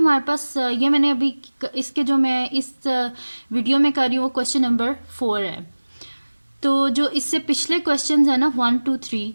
पास ये मैंने अभी इसके जो मैं इस वीडियो में कर रही हूँ वो क्वेश्चन नंबर 4 है। तो जो इससे पिछले क्वेश्चंस है ना 1 2 3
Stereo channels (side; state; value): both; inverted; correlation -1.00